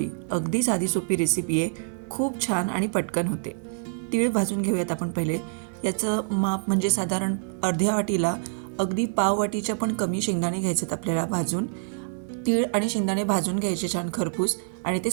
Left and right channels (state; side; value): silent; left; 61 dB below the other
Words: अगदी साधी सोपी रेसिपी आहे, खूप छान आणि पटकन होते. तीळ भाजून घेऊयात आपण पहिले. याचं माप म्हणजे साधारण अर्ध्या वाटीला अगदी पाव वाटीच्या पण कमी शेंगदाणे घ्यायचेत आपल्याला भाजून. तीळ आणि शेंगदाणे भाजून घ्यायचे छान खरपूस आणि ते